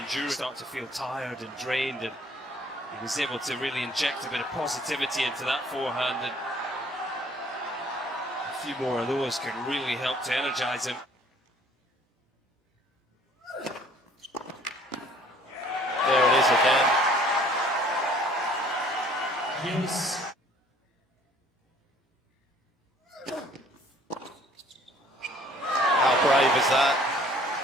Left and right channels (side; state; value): both; normal; correlation 0.56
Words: Start to feel tired and drained, and he was able to really inject a bit of positivity into that forehand, and a few more of those can really help to energize him. There it is again. Use. How brave is that?